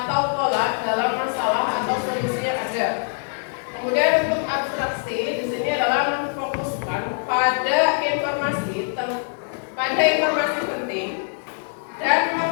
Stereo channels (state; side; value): silent; right; 63 dB below the other